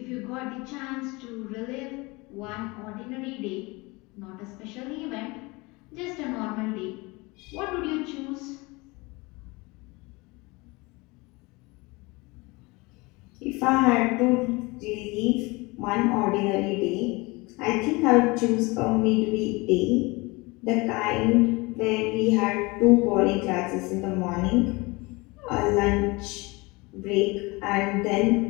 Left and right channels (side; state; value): right; quieter; 24.7 dB